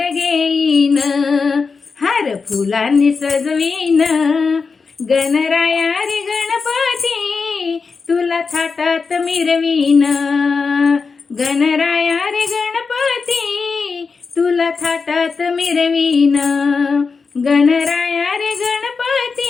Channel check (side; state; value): right; quieter; 4.9 dB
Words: घेईन, हार फुलांनी सजवीन. गणराया रे गणपती, तुला थाटात मिरवीन. गणराया रे गणपती, तुला थाटात मिरवीन. गणराया रे